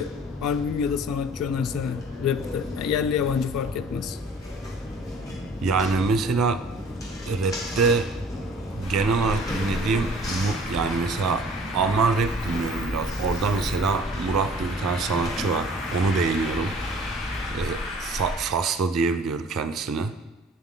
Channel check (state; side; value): normal; both; correlation 0.50